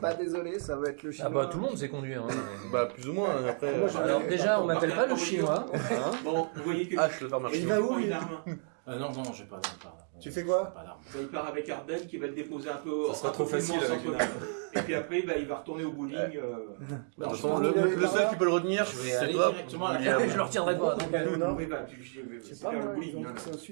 bah désolé, ça va être le chinois. Ah bah tout le monde sait conduire. Hein. Bah, plus ou moins. Après, Alors déjà, on m'appelle pas le chinois. Hein. Bon, vous voyez que. je le faire marcher. Il va où, une lui arme. Non, non, j'ai pas d'arme. Tu fais quoi? Pas d'arme. Il part avec Arden qui va le déposer un peu. Ça sera un trop peu plus facile loin avec au une centre-ville. Et puis après, bah, il va retourner au bowling. De toute Non, façon, je pense le seul qui peut le retenir, Je vais c'est aller toi. directement à la William. Je le retiendrai pas. Non. Oui, bah, Je sais c'est pas vers le moi, ils bowling. ont hein. dit que c'est au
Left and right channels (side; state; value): left; silent; 57 dB below the other